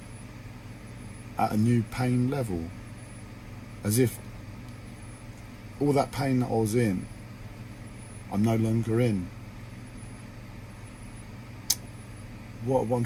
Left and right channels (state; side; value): identical; both; correlation 1.00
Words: at a new pain level, as if all that pain that I was in, I'm no longer in. What I'm